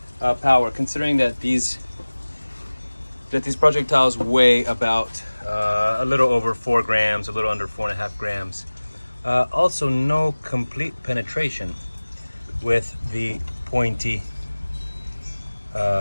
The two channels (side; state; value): both; inverted; correlation -1.00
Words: power, considering that these projectiles weigh about a little over 4 grams, a little under 4.5 grams. Also, no complete penetration with the pointy